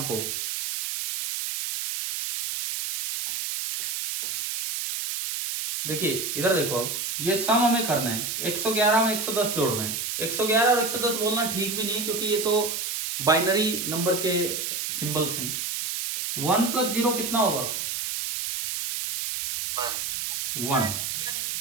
को। देखिए इधर देखो, अब ये सम हमें करना है, 111 में 110 जोड़ना है। 111 और 110 बोलना ठीक भी नहीं है क्योंकि ये तो बाइनरी नंबर के सिंबल्स हैं। 1 प्लस 0 कितना होगा? 1।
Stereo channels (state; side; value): noise; right; hiss, 3 dB below the sound